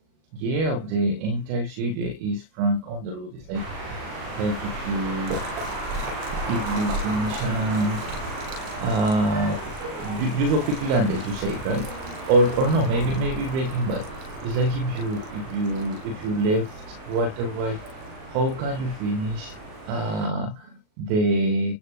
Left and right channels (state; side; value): late; left; 38 ms